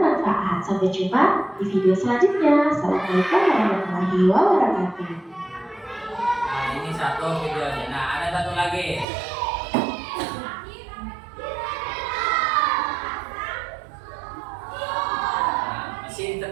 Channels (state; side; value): drops out; left; at 9.1 s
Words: Sampai jumpa di video selanjutnya. Assalamualaikum warahmatullahi wabarakatuh. Nah, ini satu videonya. Nah, ada satu lagi. Nah, mesin